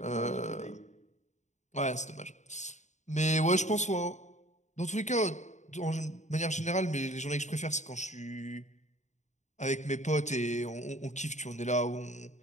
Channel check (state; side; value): late; right; 0.34 ms